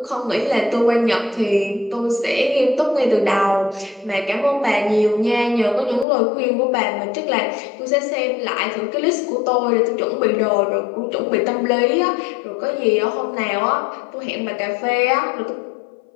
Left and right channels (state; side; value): drops out; right; at 6.1 s